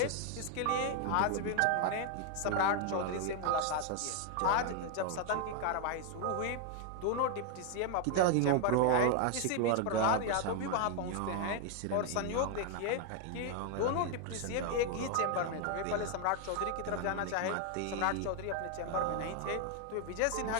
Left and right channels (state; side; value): different; both; correlation 0.00